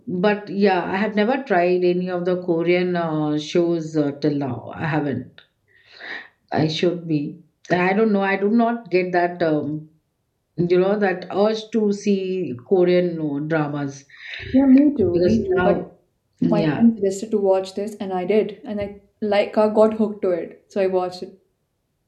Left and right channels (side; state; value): both; identical; correlation 1.00